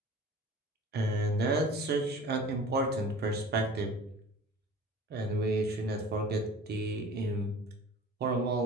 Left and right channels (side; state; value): both; normal; correlation 0.42